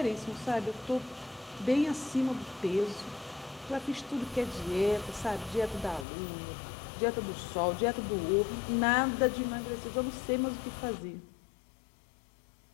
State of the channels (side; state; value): right; drops out; at 6.1 s